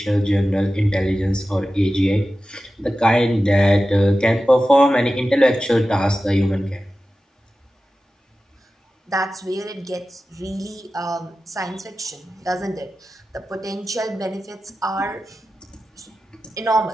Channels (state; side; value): normal; both; correlation 0.94